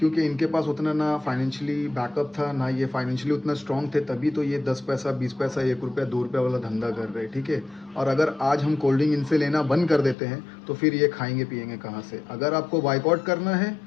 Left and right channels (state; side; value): drops out; right; at 10.2 s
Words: इनके पास उतना ना फाइनेंशियली बैकअप था, ना ये फाइनेंशियली उतना स्ट्रांग थे, तभी तो ये 10 पैसा 20 पैसा 1 रुपया 2 रुपया वाला धंधा कर रहे हैं, ठीक है। और अगर आज हम कोल्ड ड्रिंक इनसे लेना बंद कर देते हैं तो फिर ये खाएंगे पिएंगे कहाँ से? अगर आपको बाइकआउट करना है